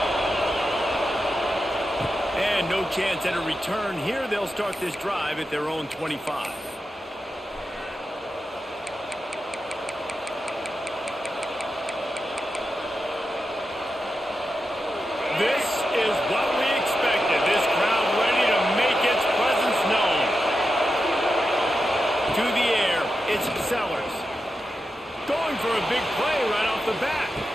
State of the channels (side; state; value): both; normal; correlation 0.89